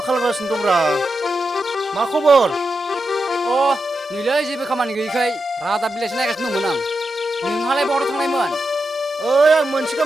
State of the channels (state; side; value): normal; both; correlation 0.88